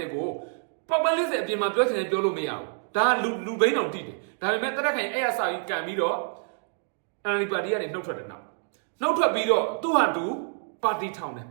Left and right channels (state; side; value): silent; left; 60 dB below the other